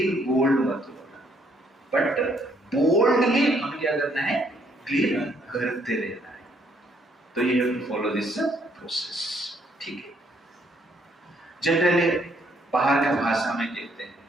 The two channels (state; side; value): normal; both; correlation 0.68